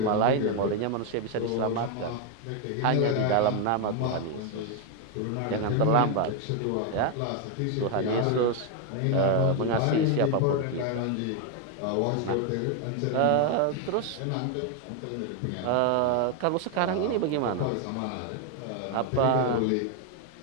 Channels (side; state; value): both; different; correlation 0.01